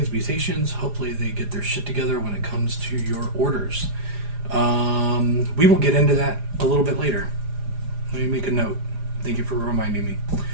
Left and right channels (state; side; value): late; left; 4.9 ms